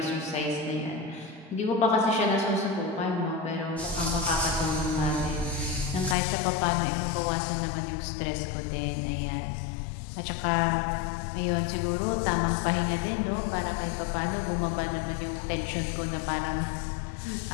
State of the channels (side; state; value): right; drops out; at 6.2 s